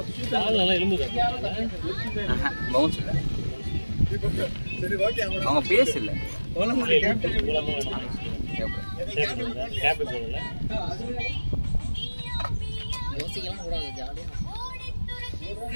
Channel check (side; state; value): both; inverted; correlation -1.00